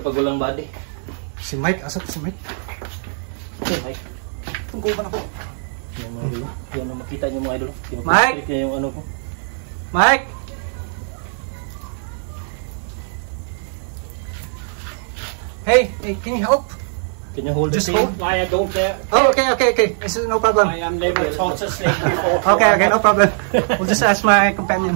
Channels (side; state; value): left; silent; 65 dB below the other